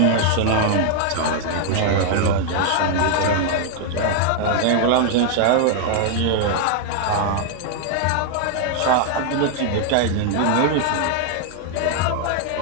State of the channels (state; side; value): different; both; correlation 0.00